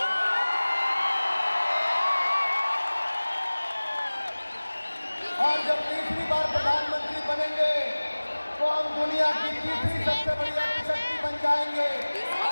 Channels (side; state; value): both; inverted; correlation -1.00